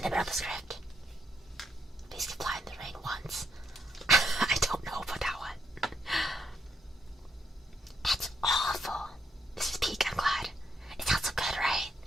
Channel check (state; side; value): normal; both; correlation 0.76